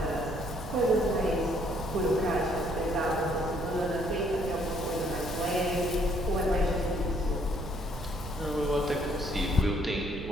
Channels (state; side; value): noise; right; rumble, 11 dB below the sound